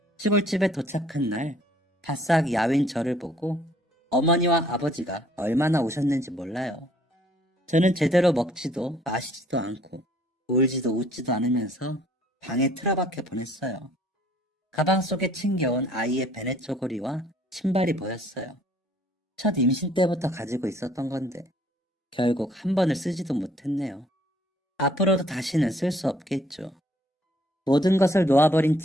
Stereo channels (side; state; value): both; normal; correlation 0.60